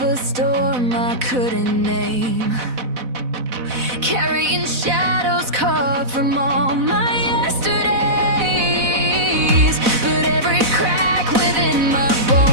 a storm I couldn't name, carrying shadows carved from all my yesterdays. But every crack within my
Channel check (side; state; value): left; late; 4.0 ms